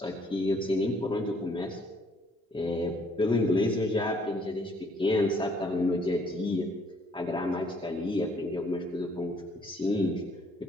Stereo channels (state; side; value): normal; both; correlation 0.65